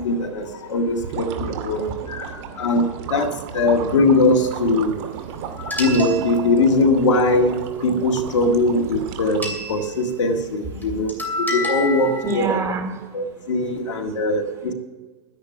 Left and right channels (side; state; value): both; normal; correlation -0.11